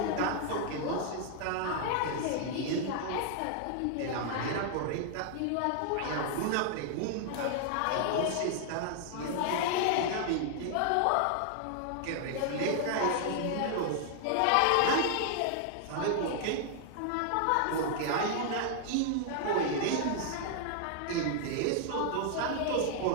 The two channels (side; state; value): both; different; correlation 0.00